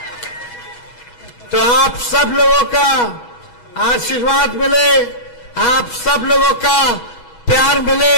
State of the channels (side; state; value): right; late; 6.2 ms